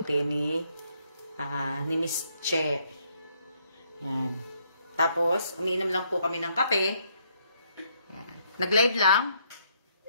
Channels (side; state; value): both; inverted; correlation -0.72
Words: ni Miss Che. Yan. Tapos, umiinom lang po kami ng kape. Yan. Nag-live lang.